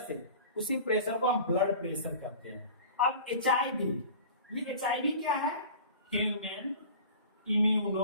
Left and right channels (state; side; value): inverted; both; correlation -0.40